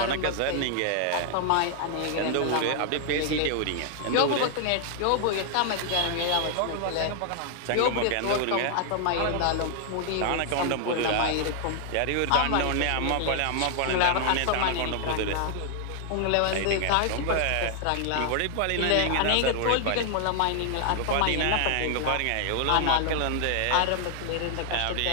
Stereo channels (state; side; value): different; both; correlation 0.00